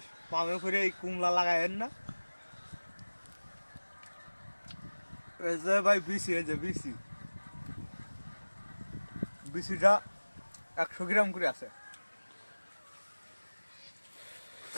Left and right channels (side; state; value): both; inverted; correlation -1.00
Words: পামে করে এই কুমলা লাগাবেন না। এই যে ভাই বিসি, এই যে বিসি, বিসিটা 100 গ্রাম করে আছে।